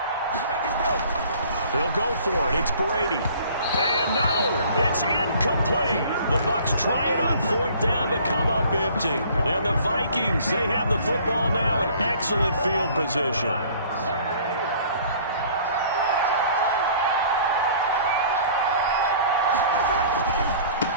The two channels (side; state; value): both; inverted; correlation -0.52